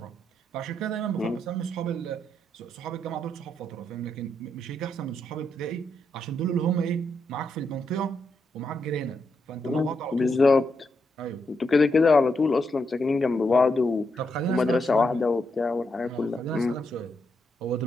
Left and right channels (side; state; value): both; normal; correlation 0.81